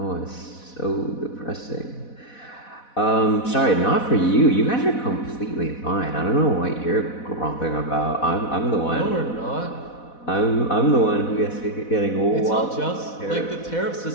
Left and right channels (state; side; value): late; right; 4.1 ms